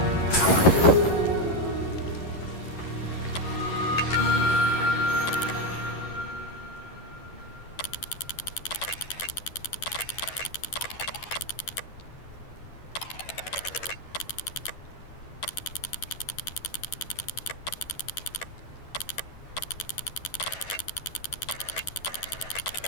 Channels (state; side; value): late; right; 11 ms